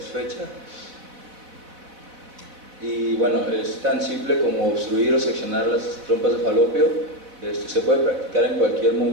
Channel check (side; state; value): left; late; 4.1 ms